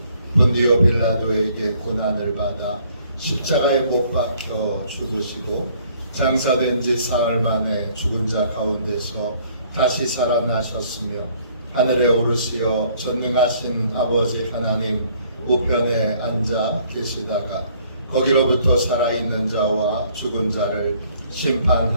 본디오 빌라도에게 고난을 받아 십자가에 못 박혀 죽으시고 장사된 지 사흘 만에 죽은 자 가운데서 다시 살아나셨으며 하늘에 오르시어 전능하신 아버지 하나님 우편에 앉아 계시다가 거기로부터 살아있는 자와 죽은 자를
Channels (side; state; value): both; inverted; correlation -0.61